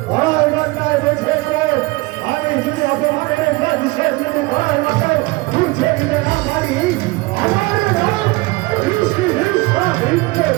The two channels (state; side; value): quieter; left; 23.4 dB